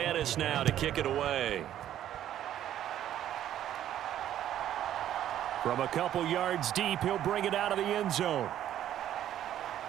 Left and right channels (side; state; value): left; quieter; 11.5 dB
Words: now to kick it away. From a couple yards deep, he'll bring it out of the end zone.